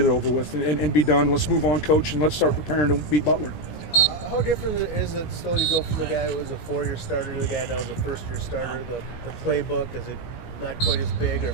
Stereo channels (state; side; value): late; right; 17 ms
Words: it over with and be done. Let's move on, coach, and let's start preparing to beat Butler. How different is it still to go from the guy who was a four-year starter to the guy that was a first-year starter? The playbook, is it not quite as big, or